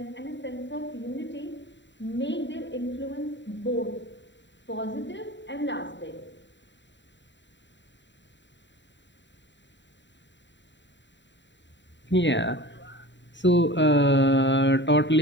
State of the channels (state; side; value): late; right; 0.52 ms